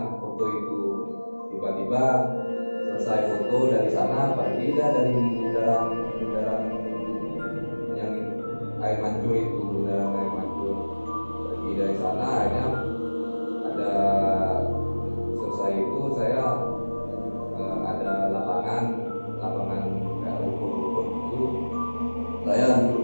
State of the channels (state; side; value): inverted; both; correlation -1.00